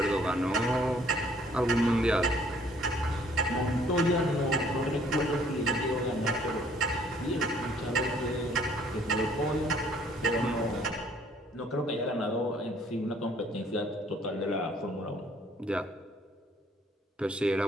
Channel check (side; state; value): both; normal; correlation 0.60